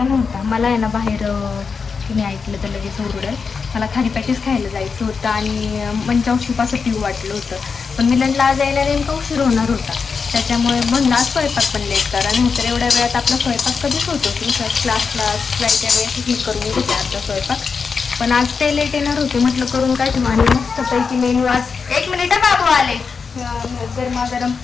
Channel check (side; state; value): right; quieter; 5.3 dB